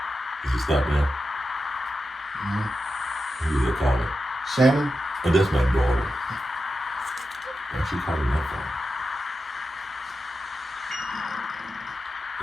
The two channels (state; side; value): normal; both; correlation 0.90